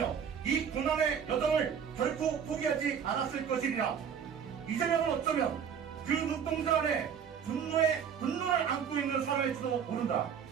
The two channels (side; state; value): left; quieter; 7.6 dB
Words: 이 고난의 여정을 결코 포기하지 않았을 것이리라. 이재명은 어쩌면 그 눈동자 안에 분노를 안고 있는 사람일지도 모른다.